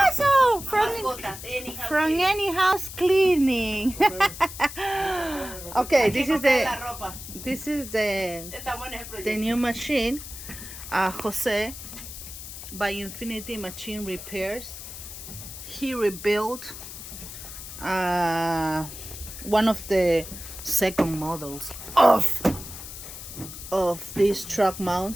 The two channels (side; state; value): left; noise; hiss, 12 dB below the sound